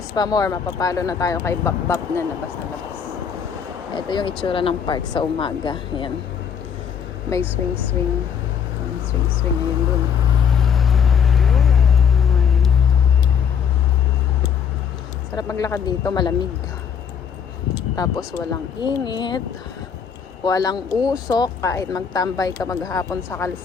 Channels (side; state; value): right; quieter; 7.4 dB